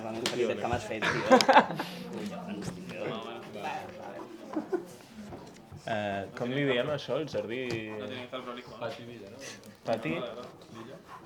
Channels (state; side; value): identical; both; correlation 1.00